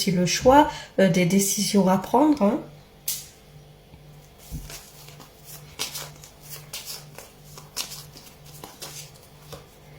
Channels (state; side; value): identical; both; correlation 1.00